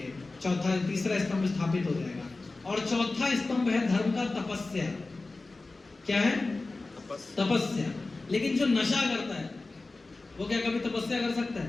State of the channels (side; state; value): right; quieter; 3.4 dB